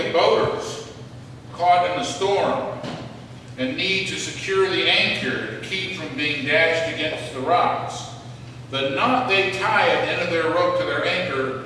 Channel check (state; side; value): identical; both; correlation 1.00